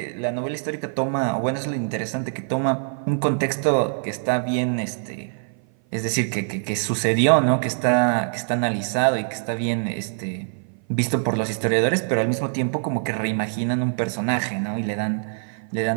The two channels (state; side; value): silent; left; 56 dB below the other